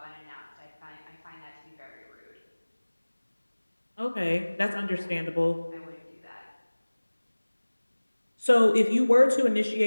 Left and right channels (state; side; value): inverted; both; correlation -1.00